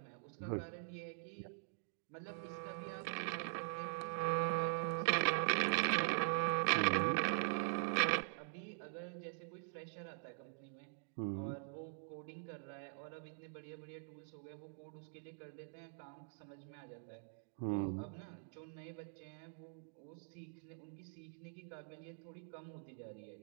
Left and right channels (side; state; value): left; silent; digital silence